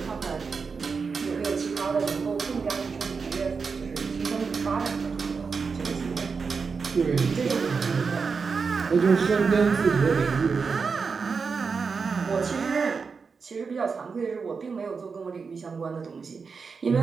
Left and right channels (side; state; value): left; quieter; 5.2 dB